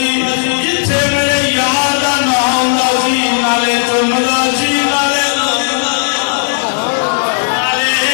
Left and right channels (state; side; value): silent; right; digital silence